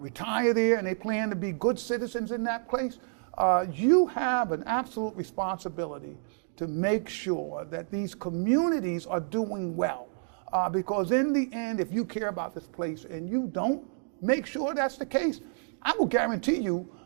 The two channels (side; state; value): left; silent; digital silence